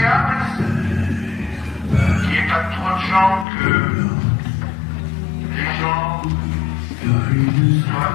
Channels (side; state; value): right; drops out; at 3.5 s